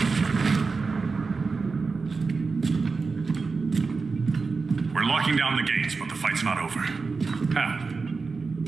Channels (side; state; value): left; quieter; 4.4 dB